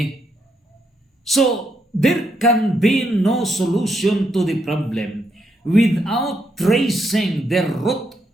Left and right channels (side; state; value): both; normal; correlation 0.78